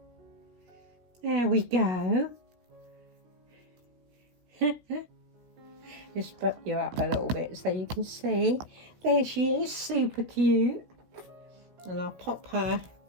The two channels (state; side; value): late; left; 16 ms